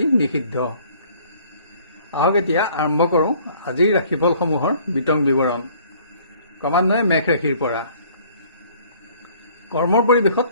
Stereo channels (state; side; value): inverted; both; correlation -0.56